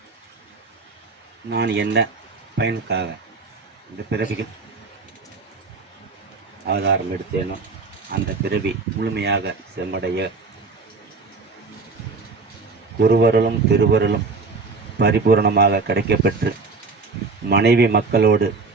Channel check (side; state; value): left; quieter; 4.2 dB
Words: நான் என்ன பயனுக்காக இந்த பிறவியில் ஆதாரம் எடுத்தேனோ அந்த பிறவி முழுமையாக செம்மடைய குருவருளும் திருவருளும் பரிபூரணமாக கிடைக்கப்பெற்று மனைவி மக்களோடு